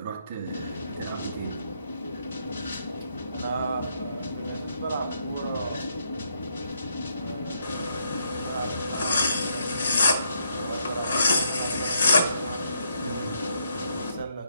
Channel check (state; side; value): inverted; both; correlation -0.75